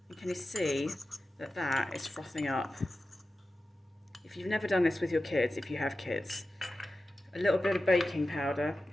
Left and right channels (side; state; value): both; normal; correlation 0.93